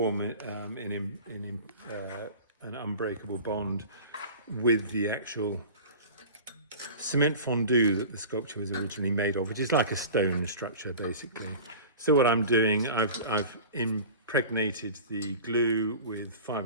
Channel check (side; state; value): both; inverted; correlation -0.37